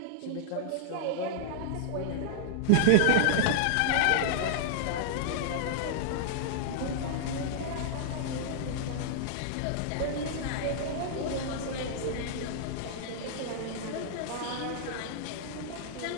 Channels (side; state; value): both; different; correlation -0.01